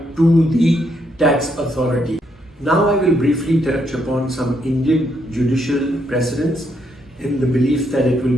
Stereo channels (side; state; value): both; normal; correlation 0.75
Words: to the tax authority. Now I will briefly touch upon some Indian judicial precedents in the belief that it will